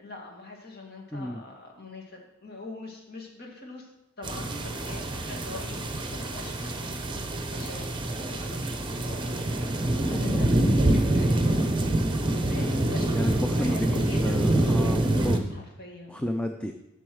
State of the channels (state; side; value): normal; both; correlation 0.85